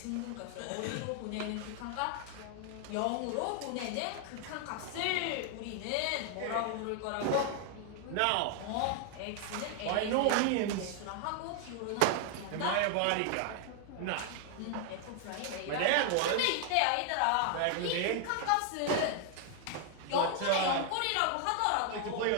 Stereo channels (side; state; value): both; different; correlation 0.00